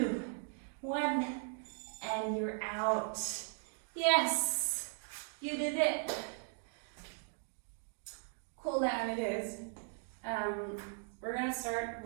1, and you're out. Yes, you did it. Cool down it is. We're gonna start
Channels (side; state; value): left; silent; 52 dB below the other